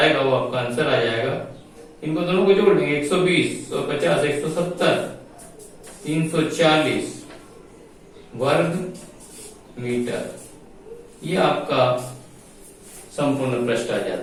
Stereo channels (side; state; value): both; identical; correlation 1.00